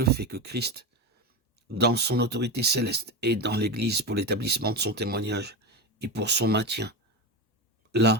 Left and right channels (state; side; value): normal; both; correlation 0.18